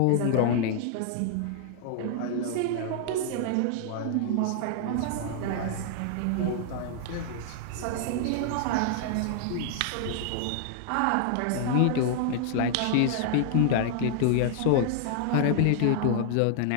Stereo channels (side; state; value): both; different; correlation -0.01